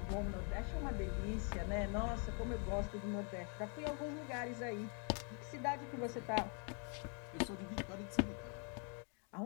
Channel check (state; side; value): quieter; right; 39.1 dB